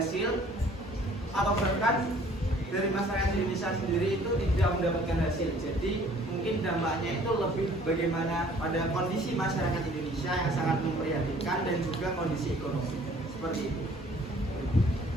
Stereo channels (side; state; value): both; normal; correlation 0.55